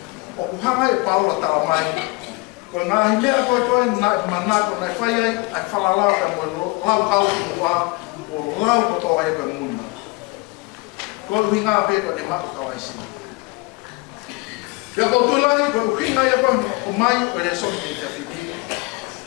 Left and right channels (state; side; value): quieter; right; 25.9 dB